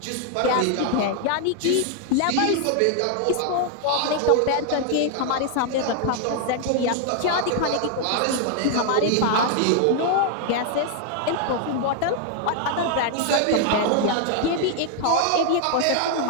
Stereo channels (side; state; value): both; different; correlation 0.00